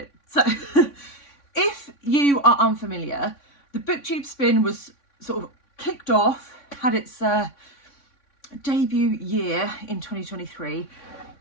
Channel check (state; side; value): late; right; 3.6 ms